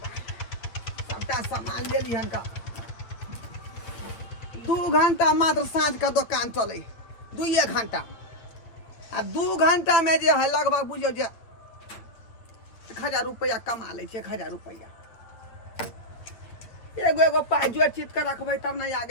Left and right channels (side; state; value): right; late; 8.5 ms